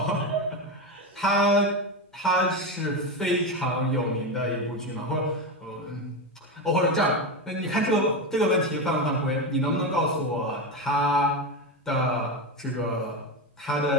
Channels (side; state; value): both; normal; correlation 0.15